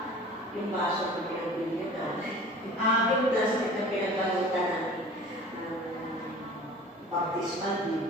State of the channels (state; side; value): normal; both; correlation 0.43